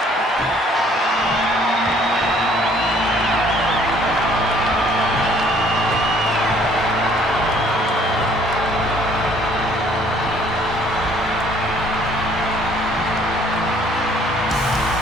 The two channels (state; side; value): normal; both; correlation 0.60